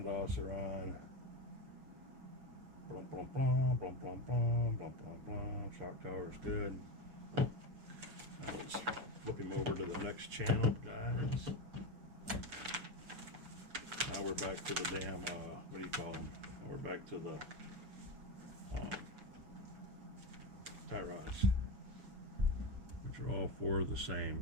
are on. Blum blum blum blum blum blum blum blum blum. Shock tower is good. Now let's flip him over to the next channel, guys. Now we're back to the damn what do you call them? Now we're back to the tie rods, which are all 4 the same.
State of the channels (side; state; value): left; late; 6.7 ms